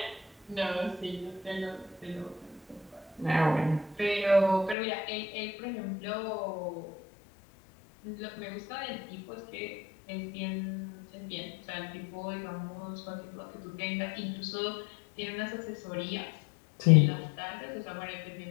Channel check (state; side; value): drops out; right; at 4.8 s